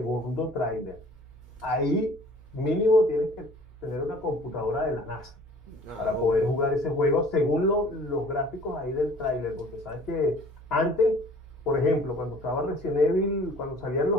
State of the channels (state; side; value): normal; both; correlation 0.50